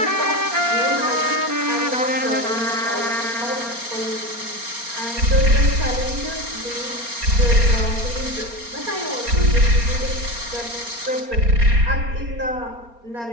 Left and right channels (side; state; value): left; late; 4.3 ms